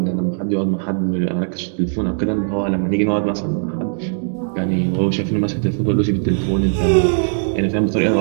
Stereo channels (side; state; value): left; silent; digital silence